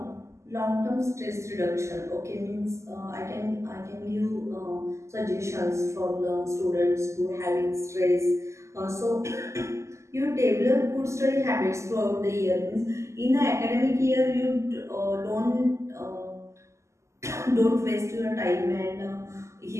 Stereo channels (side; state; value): left; late; 0.14 ms